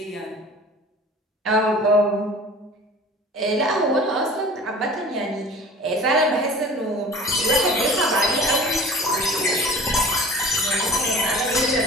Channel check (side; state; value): both; normal; correlation 0.43